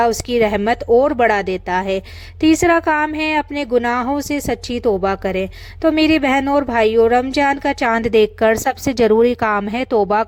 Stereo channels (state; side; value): identical; both; correlation 1.00